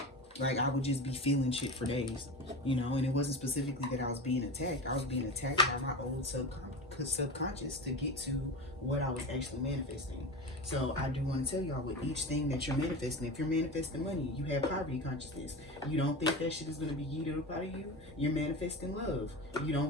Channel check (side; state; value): both; normal; correlation 0.27